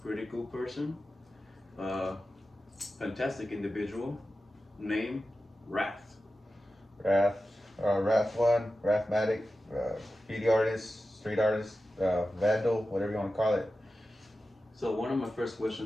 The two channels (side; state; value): both; normal; correlation 0.93